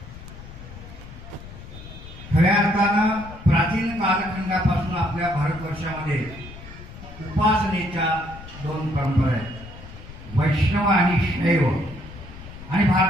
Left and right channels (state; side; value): noise; left; rumble, 15 dB below the sound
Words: खऱ्या अर्थानं प्राचीन कालखंडापासून आपल्या भारतवर्षामध्ये उपासनेच्या दोन परंपरा आहेत, वैष्णव आणि शैव. आणि